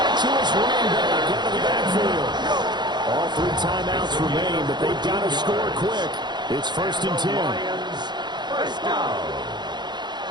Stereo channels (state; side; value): late; left; 0.21 ms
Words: to his running back out of the backfield. All 3 timeouts remain, but they've got to score quick. It's first and 10. First down.